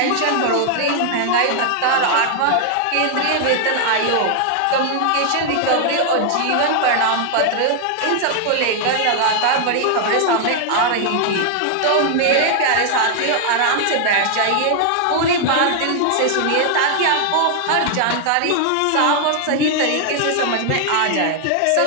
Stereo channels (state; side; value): different; both; correlation 0.00